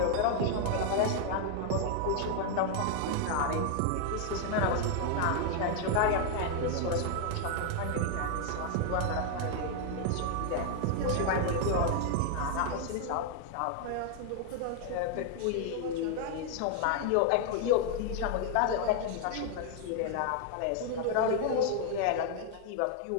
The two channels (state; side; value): different; both; correlation 0.00